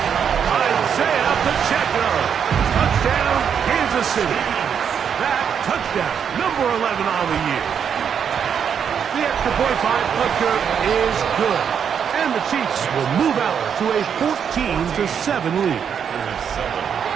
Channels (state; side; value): quieter; left; 7.7 dB